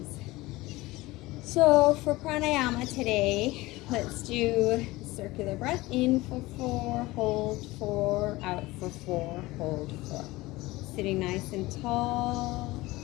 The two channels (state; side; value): quieter; right; 19.9 dB